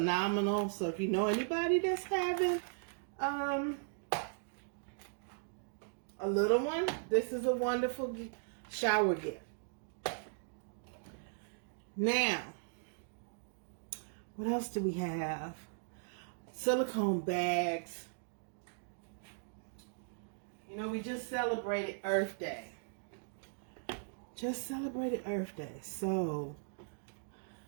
So if you know anybody that's having a little one, this is a wonderful shower gift. Now, what else do we have? Silicone bags. You know, we just celebrated Earth Day. So,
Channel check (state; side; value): silent; left; digital silence